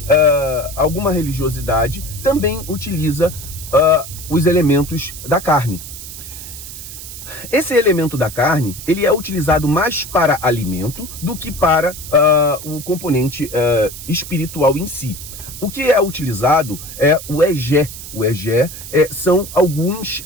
religiosidade também utiliza os elementos da carne. Esse elemento da carne, ele é utilizado mais para alimento do que para o componente espiritual em si. O que é utilizado é o egé. O egé são alguns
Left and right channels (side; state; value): right; noise; hiss, 12 dB below the sound